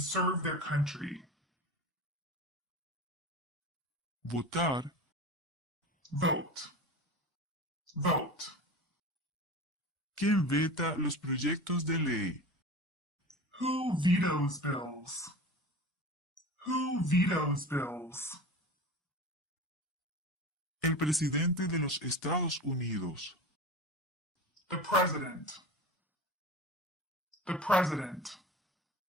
their country? Votar. Vote. Vote. ¿Quién veta los proyectos de ley? Who vetoes bills? Who vetoes bills? El presidente de los Estados Unidos. The president. The president.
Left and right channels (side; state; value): both; normal; correlation 0.31